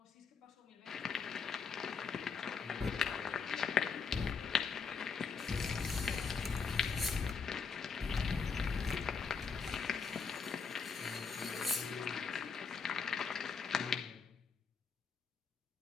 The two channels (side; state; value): right; quieter; 5.5 dB